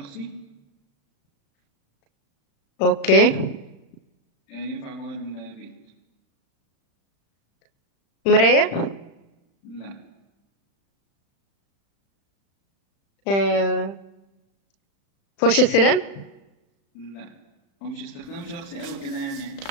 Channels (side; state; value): right; late; 35 ms